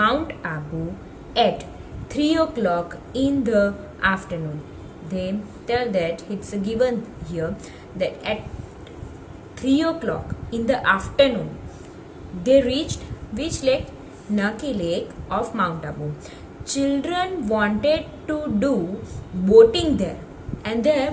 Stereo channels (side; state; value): both; identical; correlation 1.00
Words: Abu at 3 o'clock in the afternoon. They tell that it's given here that at 3 o'clock in the afternoon they reached which lake? Nucky Lake of Mount Abu. Children wanted to do boating there, and there